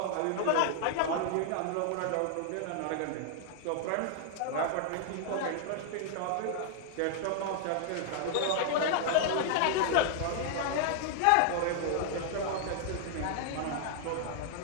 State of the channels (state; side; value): different; both; correlation -0.01